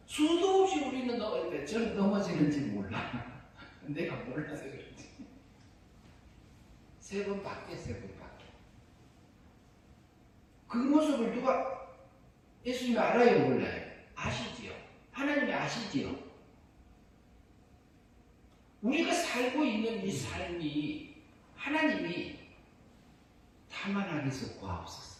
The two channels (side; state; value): both; identical; correlation 1.00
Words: 수도 없이 우리는 저는 넘어지는지 몰라. 내가 몰라서 그렇지. 3번밖에. 그 모습을 누가 예수님이 알아요, 몰라요? 아시지요. 하나님이 아시지요. 우리가 살고 있는 이 삶이 하나님이 다만 하게서